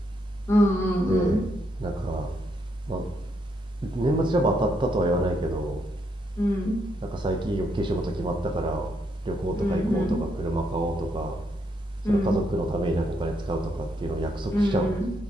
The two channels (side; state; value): both; normal; correlation 0.76